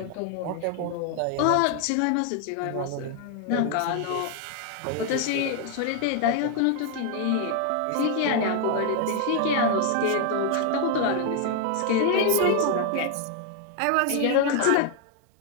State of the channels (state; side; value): different; both; correlation 0.00